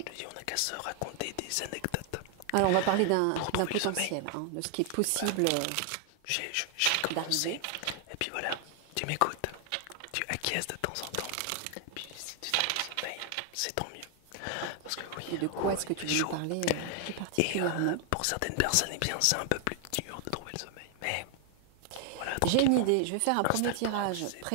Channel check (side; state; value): both; different; correlation 0.00